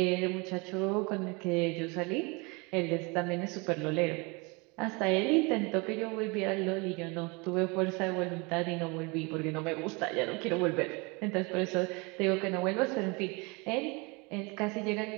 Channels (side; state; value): left; quieter; 28.5 dB